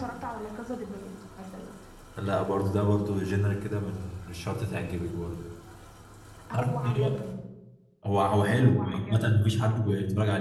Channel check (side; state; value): both; identical; correlation 1.00